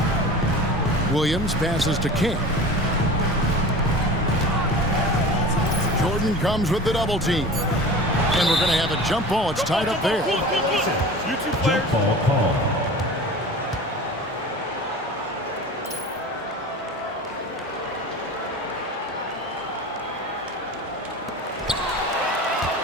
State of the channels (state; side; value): normal; both; correlation 0.36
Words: Williams passes to King. Jordan comes with the double team. And we're going to have a jump ball. It's tied up there. You two Jump players. ball call.